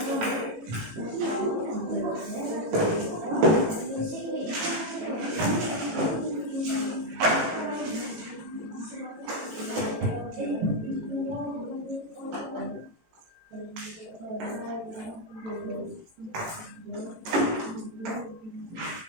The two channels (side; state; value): left; late; 18 ms